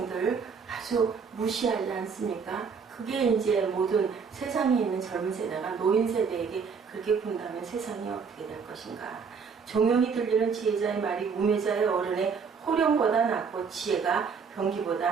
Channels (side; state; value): left; quieter; 5.8 dB